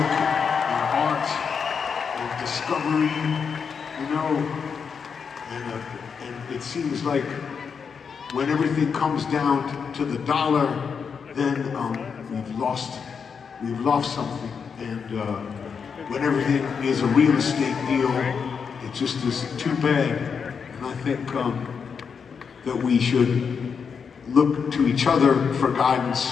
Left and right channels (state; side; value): quieter; right; 6.2 dB